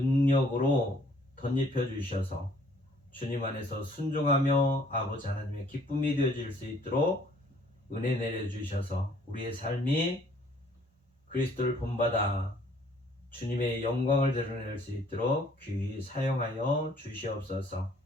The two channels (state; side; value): normal; both; correlation 0.60